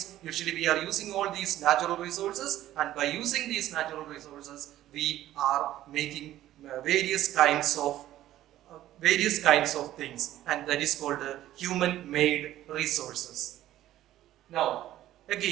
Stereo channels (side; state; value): left; quieter; 13.7 dB